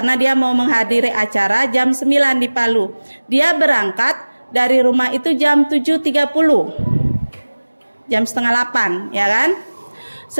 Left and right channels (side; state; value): both; inverted; correlation -1.00